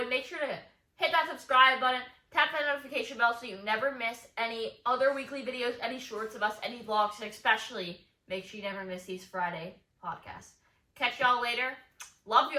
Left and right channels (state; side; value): identical; both; correlation 1.00